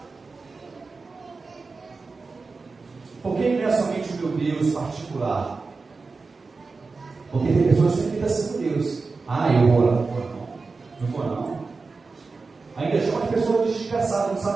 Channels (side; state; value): left; quieter; 4.2 dB